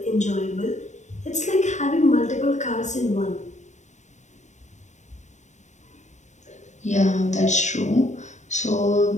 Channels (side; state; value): right; late; 0.34 ms